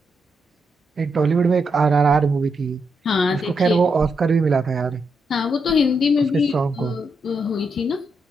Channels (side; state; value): both; normal; correlation 0.82